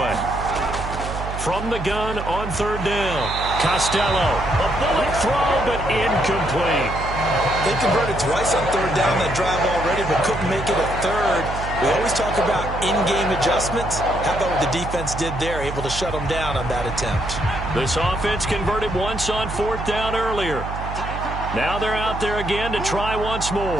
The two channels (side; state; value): right; noise; hum, 7 dB below the sound